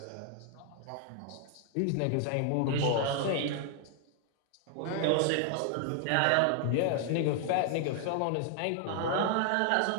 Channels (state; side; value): different; both; correlation 0.00